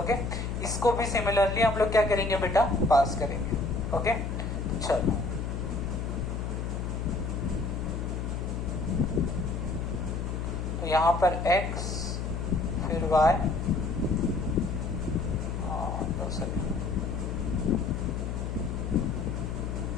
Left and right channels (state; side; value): noise; left; hum, 3 dB below the sound